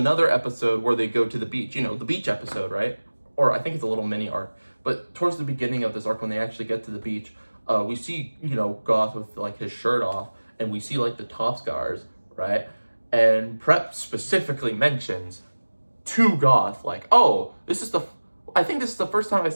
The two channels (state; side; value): inverted; both; correlation -1.00